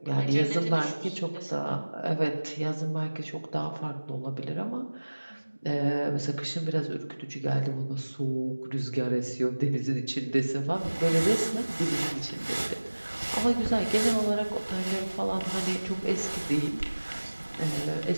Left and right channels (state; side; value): inverted; both; correlation -1.00